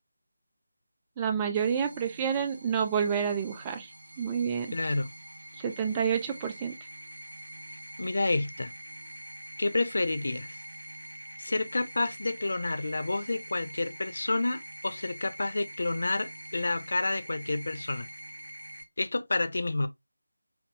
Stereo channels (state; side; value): inverted; both; correlation -0.84